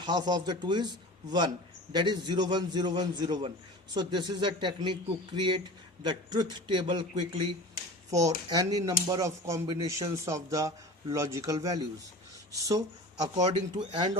of the 2 is 1, that is 0 1 0 1 0 1. So this is a technique to create the truth table quickly for any number of combinations of the logical values. So according to AND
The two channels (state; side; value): normal; both; correlation 0.36